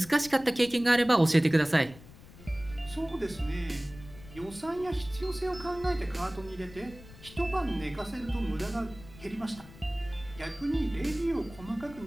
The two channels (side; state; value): left; noise; rumble, 19 dB below the sound